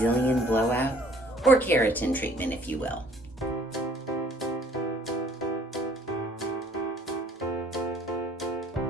blowout or keratin treatment, if you will.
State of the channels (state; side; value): normal; both; correlation 0.58